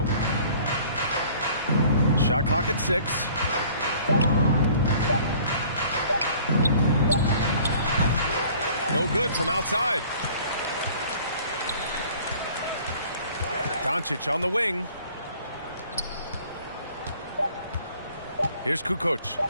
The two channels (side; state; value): both; inverted; correlation -0.53